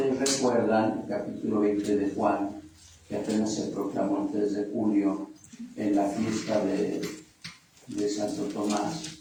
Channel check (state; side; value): identical; both; correlation 1.00